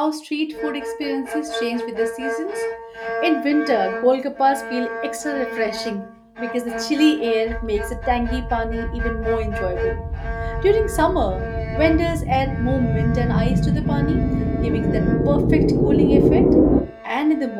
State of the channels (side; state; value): both; identical; correlation 1.00